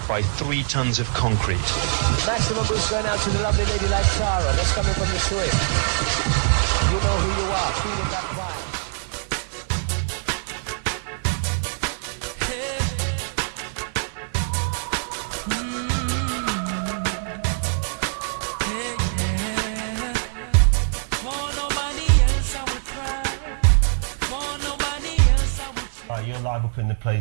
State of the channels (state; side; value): silent; left; digital silence